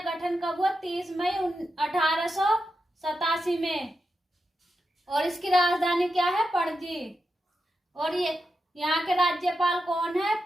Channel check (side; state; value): both; normal; correlation 0.88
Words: गठन कब हुआ? 30 मई 1887 में। और इसकी राजधानी क्या है? पणजी। और ये यहाँ के राज्यपाल कौन है?